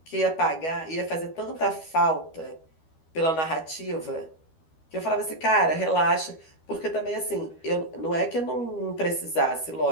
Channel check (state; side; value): late; right; 12 ms